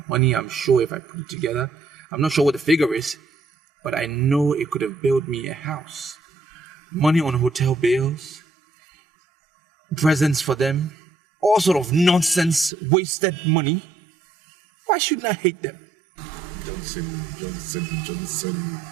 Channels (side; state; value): left; drops out; at 12.7 s